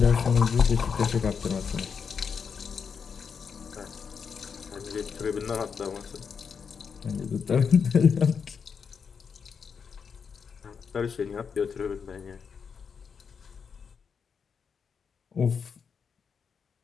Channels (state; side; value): quieter; right; 6.3 dB